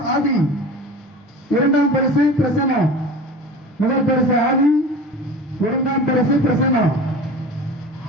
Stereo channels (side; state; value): both; normal; correlation 0.36